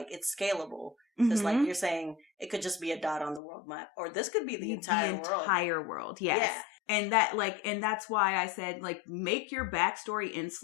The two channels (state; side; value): drops out; right; at 3.4 s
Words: it's scalable. Because like you're saying it could just be a dot on the world map, or this could be the entire world. Yes. Yeah. And that's why I said, like, make your backstory